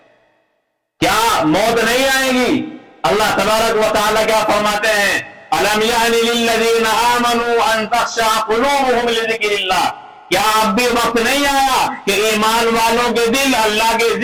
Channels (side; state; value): both; identical; correlation 1.00